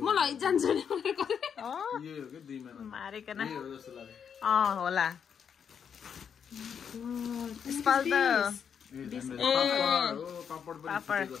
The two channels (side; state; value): right; quieter; 7.5 dB